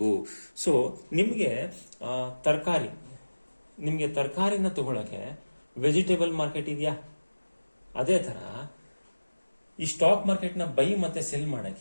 ಸೊ ನಿಮಗೆ ತರಕಾರಿನ ತಗೊಳ್ಳೋಕೆ ವೆಜಿಟೇಬಲ್ ಮಾರ್ಕೆಟ್ ಇದೆಯಾ? ಅದೇ ಥರ ಈ ಸ್ಟಾಕ್ ಮಾರ್ಕೆಟ್ನ ಬೈ ಮತ್ತೆ ಸೆಲ್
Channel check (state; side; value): inverted; both; correlation -1.00